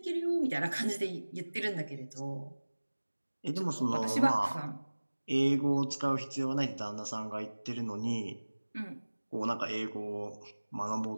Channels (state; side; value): inverted; both; correlation -1.00